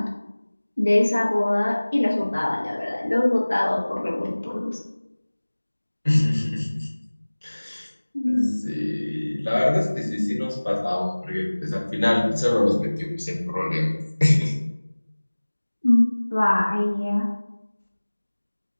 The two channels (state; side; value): inverted; both; correlation -1.00